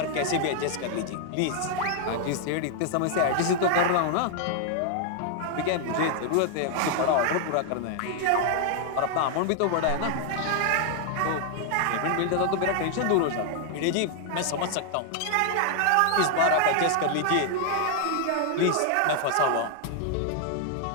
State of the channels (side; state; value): both; different; correlation 0.00